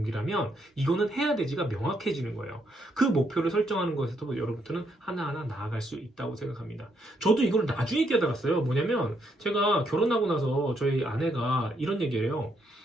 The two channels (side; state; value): both; normal; correlation 0.75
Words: 이거는 해야 되지가 명확해지는 거예요. 그 목표를 설정하는 것에서 여러분들은 하나하나 나아갈 수 있다고 생각합니다. 저도 이걸 나중에 깨달았어요. 뭐냐면 제가 결혼하고 나서 저희 아내가 이런 얘기를 해요.